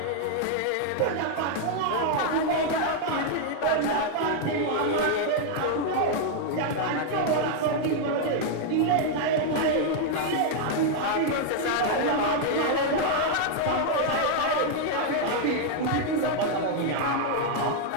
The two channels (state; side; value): different; both; correlation 0.00